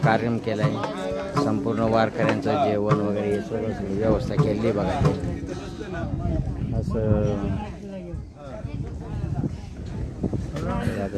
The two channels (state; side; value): identical; both; correlation 1.00